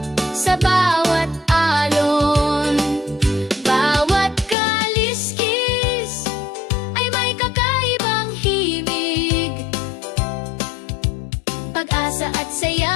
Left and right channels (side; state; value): right; drops out; at 4.5 s